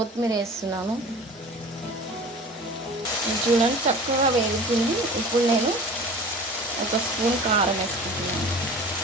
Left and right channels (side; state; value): both; normal; correlation 0.40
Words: వేస్తున్నాను. చూడండి చక్కగా వేగుతుంది. ఇప్పుడు నేను ఒక స్పూన్ కారం వేసుకుంటున్నాను.